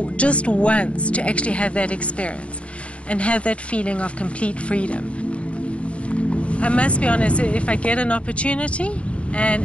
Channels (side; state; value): right; late; 0.062 ms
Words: just once to actually have that experience and have that feeling of complete freedom. I must be honest, if I get an opportunity